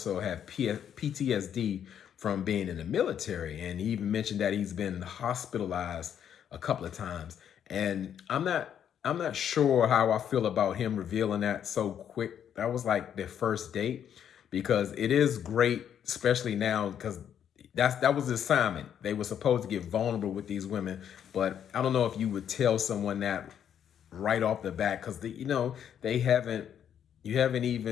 have PTSD from being in the military. And he even mentioned that he's been hospitalized a couple of times. And I'm not sure how I feel about him revealing that so quick. That was like their first date, because it is great, especially now, because that was the assignment. They were supposed to get vulnerable with these women, but I don't know if you would tell someone that right off the bat, because you haven't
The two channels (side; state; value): right; quieter; 9.1 dB